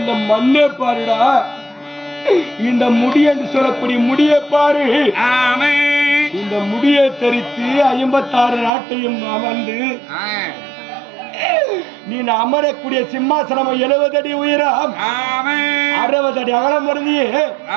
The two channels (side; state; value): left; drops out; at 8.7 s